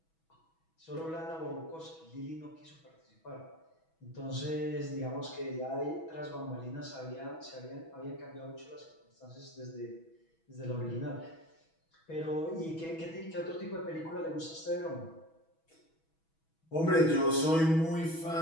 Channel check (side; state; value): right; late; 6.2 ms